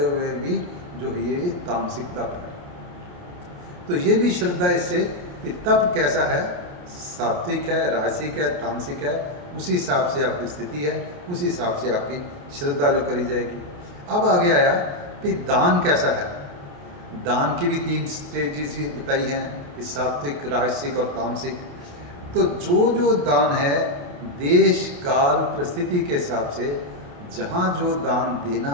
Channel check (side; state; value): left; late; 28 ms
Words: हुए भी जो है ये तामसिक तप है। तो ये भी श्रद्धा इससे कि तप कैसा है, सात्विक है, राजसिक है, तामसिक है, उसी हिसाब से आपकी स्थिति है, उसी हिसाब से आपकी श्रद्धा जो करी जाएगी। अब आगे आया कि दान कैसा है। दान की भी 3 स्टेजेस बताई हैं कि सात्विक, राजसिक और तामसिक। तो जो दान है देश काल परिस्थिति के हिसाब से, जहाँ जो दान देना